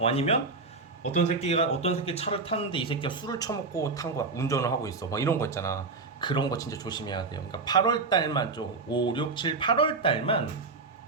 어떤 새끼 차를 탔는데 이 새끼가 술을 처먹고 탄 거야. 운전을 하고 있어. 막 이런 거 있잖아. 그런 거 진짜 조심해야 돼요. 그러니까 8월 달만 좀 5, 6, 7, 8월 달만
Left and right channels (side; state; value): left; quieter; 4.0 dB